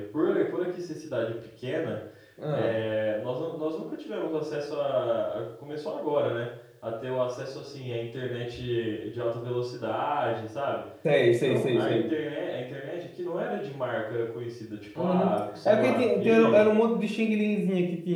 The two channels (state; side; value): identical; both; correlation 1.00